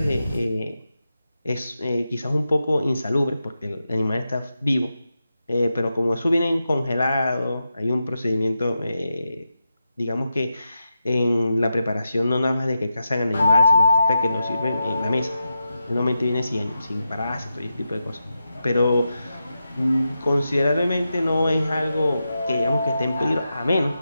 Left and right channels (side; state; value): both; inverted; correlation -0.89